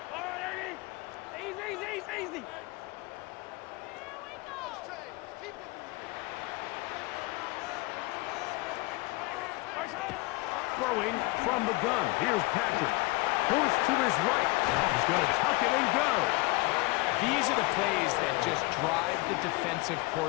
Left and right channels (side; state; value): right; quieter; 23.2 dB